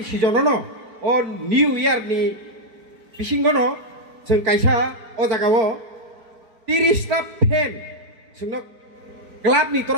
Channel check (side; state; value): left; late; 4.5 ms